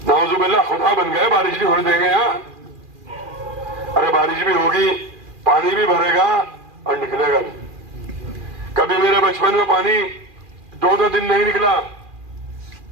नाउजुबिल्लाह खुदा बन गए, बारिश नहीं होने देंगे यहाँ। अरे बारिश भी होगी, पानी भी भरेगा और निकलेगा नहीं। कभी मेरे बचपन में पानी 2-2 दिन नहीं निकला,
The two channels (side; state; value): left; late; 2.4 ms